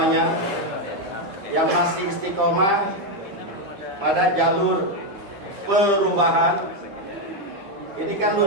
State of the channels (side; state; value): left; late; 10 ms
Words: yang masih istiqomah pada jalur perubahan. Ini kan